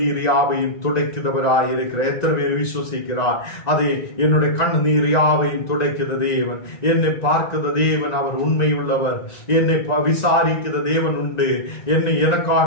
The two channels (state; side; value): late; right; 1.9 ms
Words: யாவையும் துடைக்கிறவராய் இருக்கிறார். எத்தனை பேர் விசுவசிக்கிறார்? என்னுடைய கண்ணீர் யாவையும் துடைக்கிற தேவன், என்னை பார்க்கிற தேவன், அவர் உண்மை உள்ளவர். என்னை விசாரிக்கிற தேவன் உண்டு.